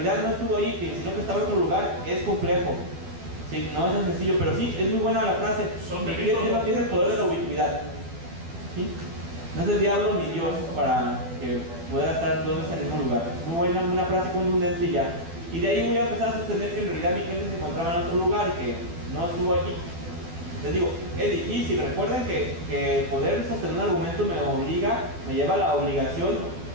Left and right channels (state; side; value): late; left; 12 ms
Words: no estuvo ahí, sino que estaba en otro lugar, es complejo. Sí, no es tan sencillo, pero sí, es muy buena la frase. Mi cliente no tiene el poder de la ubicuidad. ¿Sí? No es el diablo ni Dios para que pueda estar 2 veces en el mismo lugar. Muy buena, una frase contundente y ya. Y de ahí voy a empezar a sostener que en realidad mi cliente se encontraba en otro lugar y que no estuvo aquí. Les digo, es difícil. Recuerden que poder sostener un argumento me lleva a la obligación